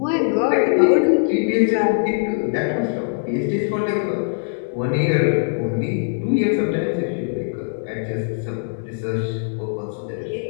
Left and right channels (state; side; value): silent; right; digital silence